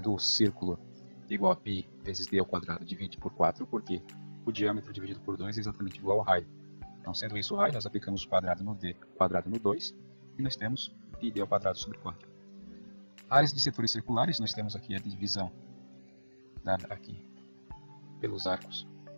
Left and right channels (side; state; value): both; inverted; correlation -1.00